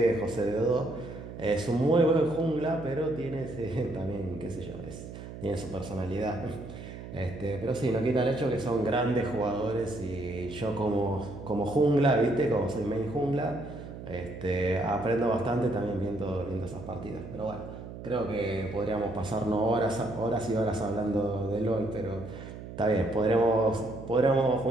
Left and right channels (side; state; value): right; noise; hum, 12 dB below the sound